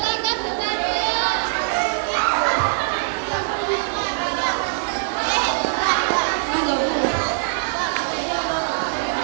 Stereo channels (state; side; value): silent; left; digital silence